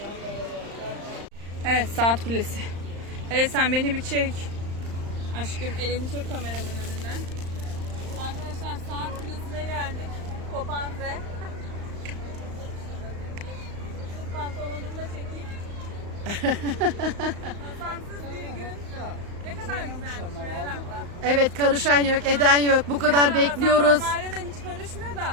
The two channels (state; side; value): late; left; 35 ms